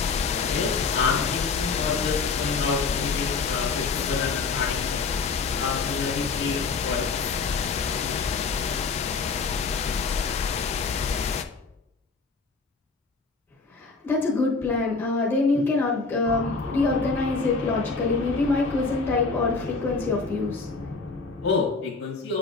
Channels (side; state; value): right; quieter; 4.4 dB